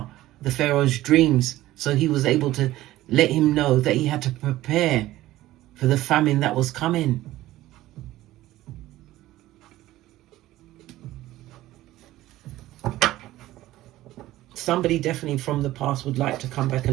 the Pharaoh's dreams. So he was able to let him know that he had to prepare for the famine that was coming. Somebody definitely from the past would like to come back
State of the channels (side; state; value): left; quieter; 15.8 dB